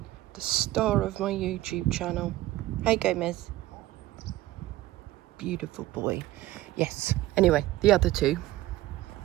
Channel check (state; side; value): quieter; left; 16.2 dB